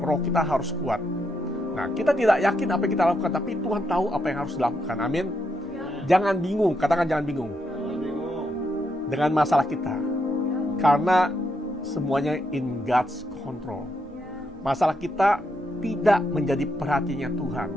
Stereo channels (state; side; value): normal; both; correlation 0.80